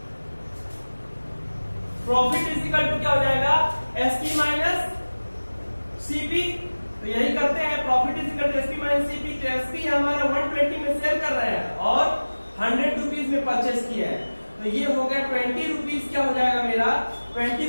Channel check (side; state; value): both; inverted; correlation -1.00